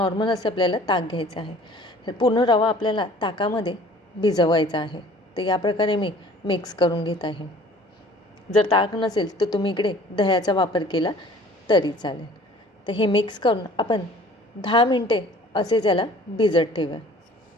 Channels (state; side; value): normal; both; correlation 0.50